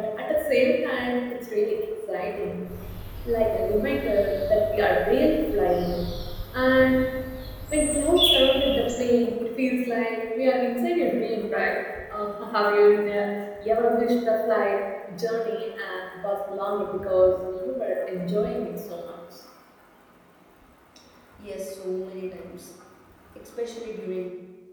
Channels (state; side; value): identical; both; correlation 1.00